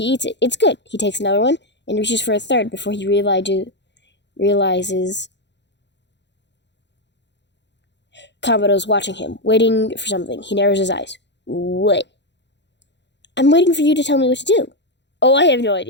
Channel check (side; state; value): right; late; 0.51 ms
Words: eats it. It's good. He takes another one and reaches for a third before he realizes Kamado's watching him, waiting for something. He narrows his eyes. What? I'm waiting for you to tell me what to do. Oh, I have no